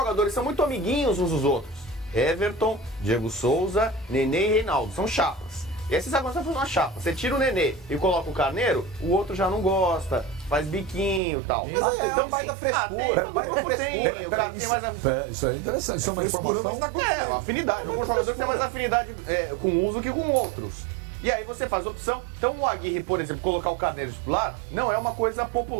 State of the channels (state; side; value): drops out; left; at 11.2 s